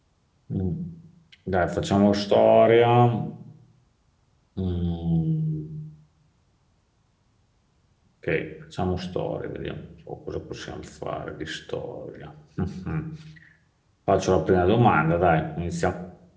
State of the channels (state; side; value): identical; both; correlation 1.00